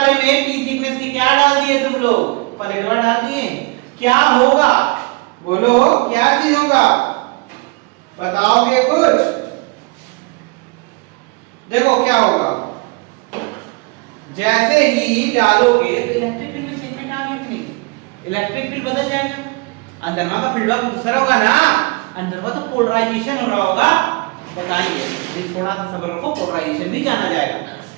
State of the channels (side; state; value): left; quieter; 27.8 dB